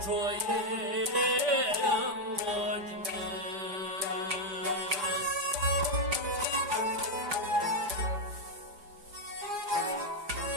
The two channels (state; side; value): late; left; 5.1 ms